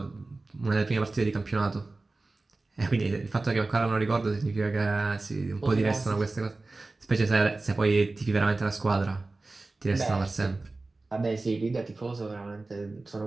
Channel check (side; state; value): left; quieter; 3.3 dB